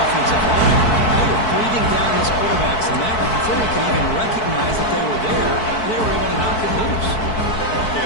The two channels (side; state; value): right; late; 4.6 ms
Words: line. They were breathing down his quarterback's neck before he could even recognize that they were there. They were able to knock it loose. Okay,